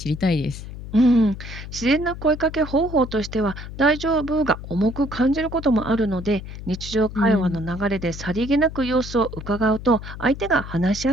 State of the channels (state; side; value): noise; left; hum, 11 dB below the sound